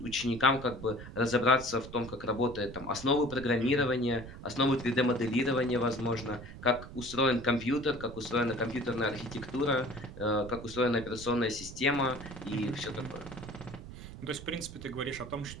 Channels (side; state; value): right; noise; rumble, 13 dB below the sound